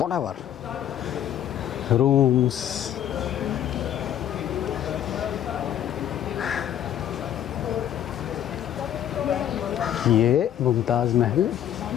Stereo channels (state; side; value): quieter; right; 10.7 dB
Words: रूम्स। ये मुमताज़ महल